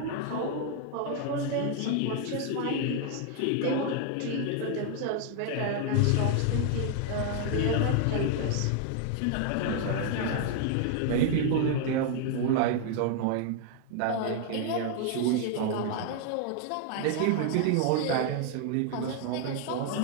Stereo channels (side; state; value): both; different; correlation 0.00